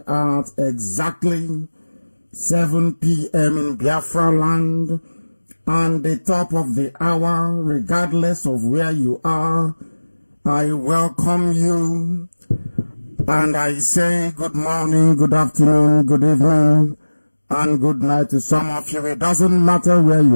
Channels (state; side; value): inverted; both; correlation -1.00